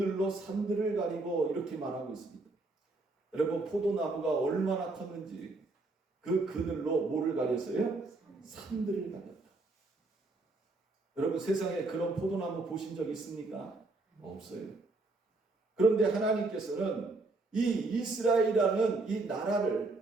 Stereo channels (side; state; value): left; quieter; 3.3 dB